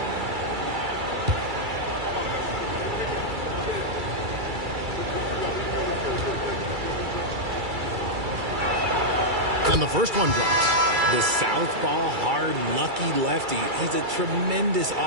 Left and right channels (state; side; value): late; left; 2.3 ms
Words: And the first one drops. The southpaw, hard, lucky lefty. He's a tremendous